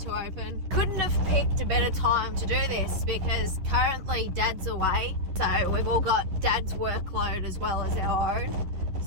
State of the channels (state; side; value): late; left; 11 ms